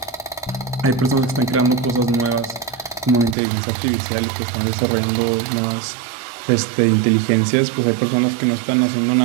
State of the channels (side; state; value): left; drops out; at 3.4 s